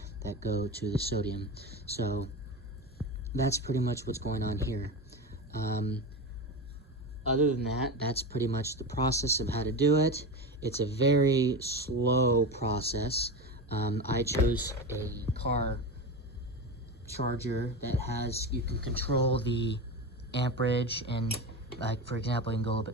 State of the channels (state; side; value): normal; both; correlation 0.22